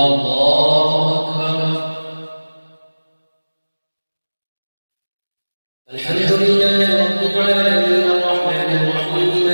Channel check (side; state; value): both; inverted; correlation -1.00